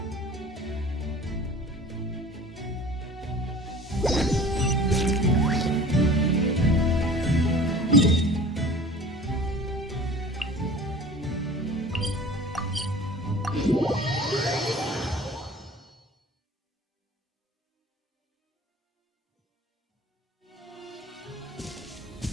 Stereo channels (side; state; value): both; normal; correlation 0.42